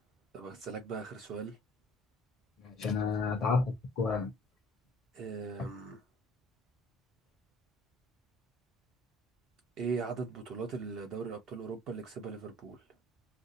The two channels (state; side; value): normal; both; correlation 0.54